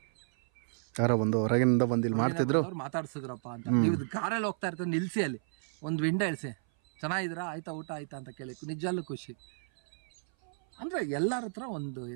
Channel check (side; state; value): left; silent; 56 dB below the other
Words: ಯಾರೋ ಒಂದು ಹೊರಗಿನಿಂದ ಬಂದಿದ್ರು ಮಾತಾಡ್ಸಿದ್ರಪ್ಪ ಅಂತ. ನೀವು ಕಾರಲ್ಲಿ ಹೋಗ್ತಾ ಇರ್ತಾರೆ, ನಿಲ್ಸಿ ಅಲ್ಲಿ ಒಂದು ವಿಂಡೋ ಇಳಿಸಿ, ಚೆನ್ನಾಗಿದ್ದೀರಾ, ಆಯ್ತಾ ಊಟ ಆಯ್ತಾ ಅಂತ ಕೇಳಿ, ನಿಜಲ್ಲೂ ಖುಷಿ. ಅಂದರೆ ಎಲ್ಲರ ಹತ್ರ ಒಂದು